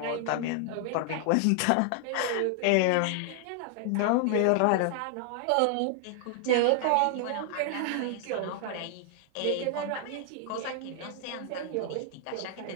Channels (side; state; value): both; different; correlation 0.00